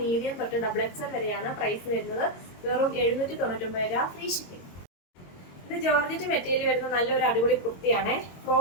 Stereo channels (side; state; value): right; late; 22 ms